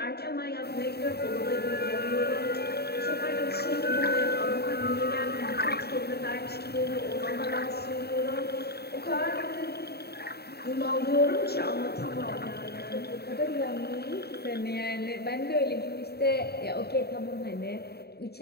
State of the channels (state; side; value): late; right; 0.47 ms